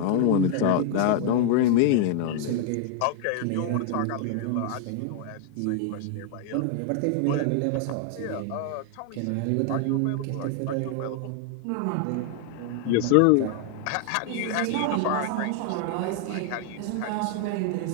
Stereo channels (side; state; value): both; different; correlation 0.00